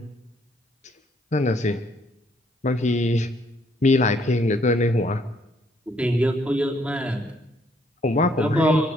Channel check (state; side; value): normal; both; correlation 0.68